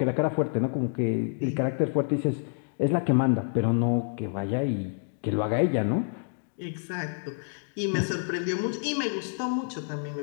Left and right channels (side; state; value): right; silent; digital silence